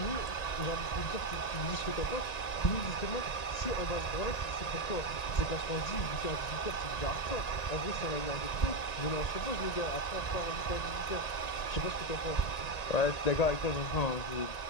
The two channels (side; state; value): right; late; 1.9 ms